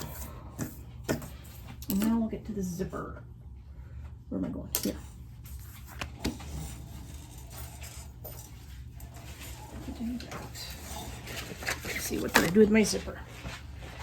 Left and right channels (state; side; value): identical; both; correlation 1.00